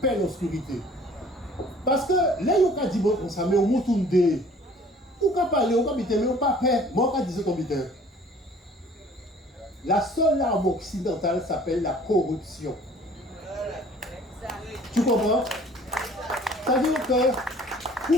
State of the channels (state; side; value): normal; both; correlation 0.52